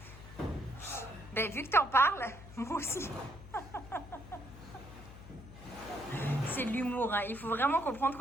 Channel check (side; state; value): left; noise; hum, 16 dB below the sound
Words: Ben, vu que t'en parles, moi aussi. C'est de l'humour. Hein. Il faut vraiment comprendre